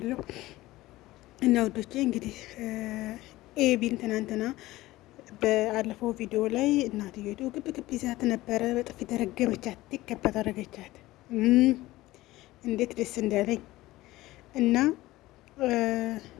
እና ወዶቼ እንግዲህ ኤቢን ትናንትና በአለፈው ቪዲዮ ላይ እናትየቱ ግብ ግብ ይዛት ነበረ። በጥፊ ተረገመቻት፣ ይከበት አደረገቻት። እንዴት ደስ እንዳለኝ እና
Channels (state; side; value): quieter; right; 17.7 dB